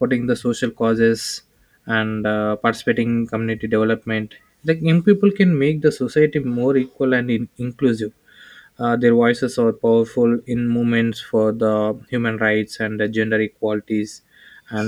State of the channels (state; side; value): identical; both; correlation 1.00